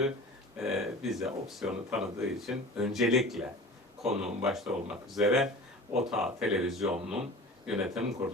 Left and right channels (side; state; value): both; normal; correlation 0.39